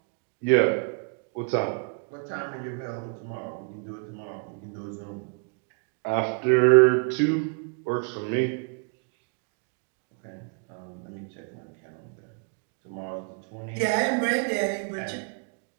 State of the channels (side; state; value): left; quieter; 36.8 dB